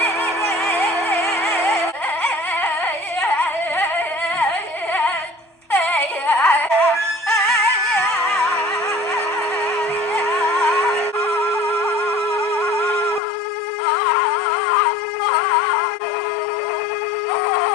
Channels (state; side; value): drops out; right; at 13.2 s